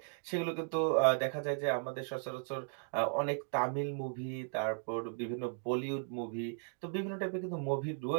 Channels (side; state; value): left; silent; 54 dB below the other